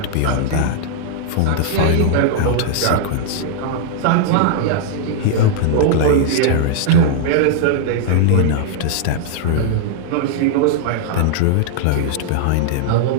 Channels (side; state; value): both; different; correlation -0.01